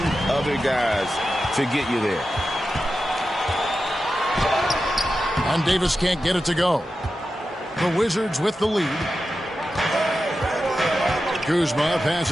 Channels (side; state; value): both; normal; correlation 0.91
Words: other guys to get you there. And Davis can't get it to go. The Wizards with the lead. Kuzma